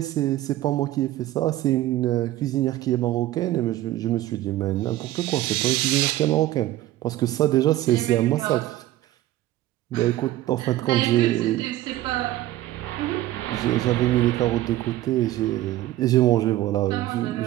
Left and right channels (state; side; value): quieter; left; 15.1 dB